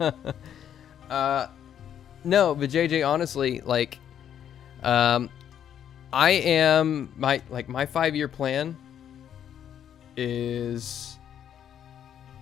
but JJ, honestly, like, I am my 5-year plan is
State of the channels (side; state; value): right; quieter; 9.5 dB